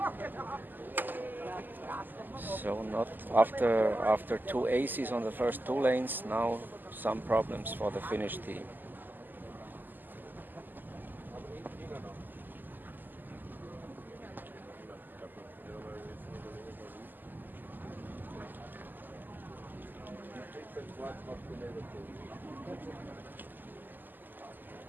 So not after 2 aces on the first 2 lanes, now some problems for the Finnish team.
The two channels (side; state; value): left; late; 0.088 ms